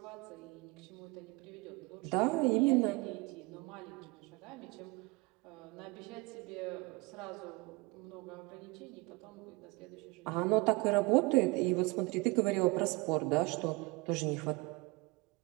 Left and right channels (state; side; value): quieter; left; 25.2 dB